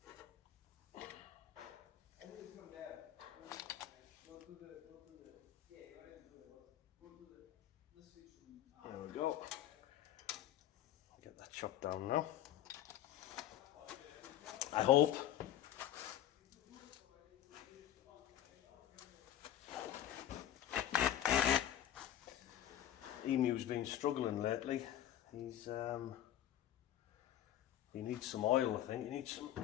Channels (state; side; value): quieter; right; 11.9 dB